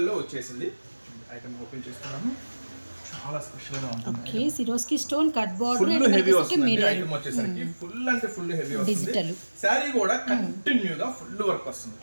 లో వచ్చేసింది. ఐటమ్ ఓపెన్ చేస్తున్నాను. చాలా స్పెషల్ గా ఉంటుంది. Okay, Swarovski stone cut border, full heavy వస్తుంది. ఐటమ్ వచ్చేసరికి ఫుల్ అంటే ఫుల్ హెవీ వస్తుంది. డిజిటల్ సారీ కూడా కంటిన్యూగా ఫుల్ వర్క్ వస్తుంది.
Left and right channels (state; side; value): inverted; both; correlation -1.00